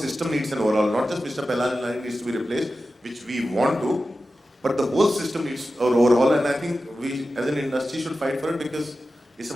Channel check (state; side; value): normal; both; correlation 0.93